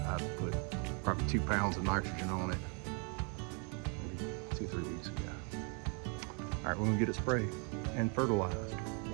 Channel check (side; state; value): left; quieter; 36.6 dB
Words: put probably 2 pounds of nitrogen on it maybe 2 or 3 weeks ago. All right, we're gonna get it sprayed and fertilized.